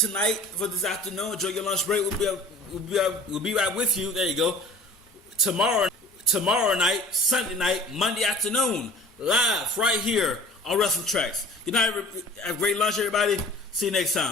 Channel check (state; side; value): normal; both; correlation 0.45